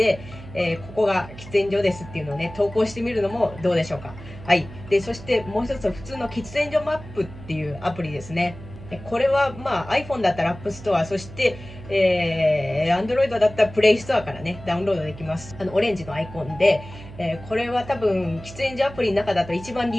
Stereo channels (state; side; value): noise; right; hum, 15 dB below the sound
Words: ここが喫煙所ですっていうのをね、投稿してみるのもどうでしょうか。はい。で、そしてもう一つは普通の喫煙所マップっていうアプリですね。これはiPhone だったら App Store、そして、Android だったら Play Store からね、ダウンロードできます。オレンジのアイコンで、これは多分、喫煙所アプリの中だと一番